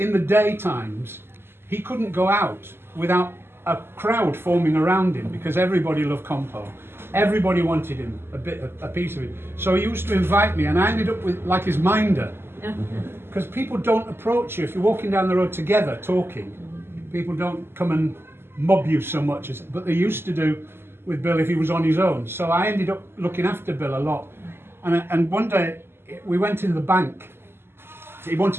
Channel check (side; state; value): left; late; 0.11 ms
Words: the daytimes, he couldn't go out without a crowd forming around him, because everybody loved Compo. Everybody wanted him, a piece of it. So he used to invite me, and I ended up with like his minder. Because people don't approach you if you're walking down the road together talking. People don't come and mob you so much, but they used to do with Bill if he was on his own. So I ended up looking after Bill a lot. And one day we went in the bank. He